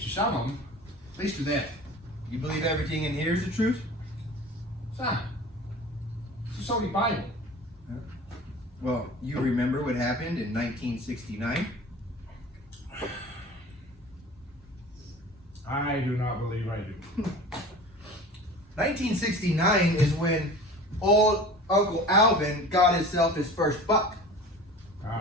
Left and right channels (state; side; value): normal; both; correlation 0.39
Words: to some of them. At least to them. You believe everything in here is the truth? Son, it's the Holy Bible. Well, you remember what happened in 1969? I do not believe I do. 1969 is when old Uncle Alvin got himself his first buck. Wow.